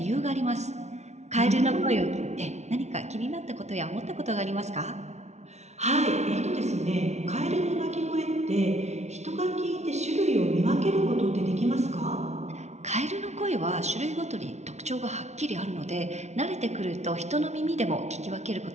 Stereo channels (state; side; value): late; left; 0.32 ms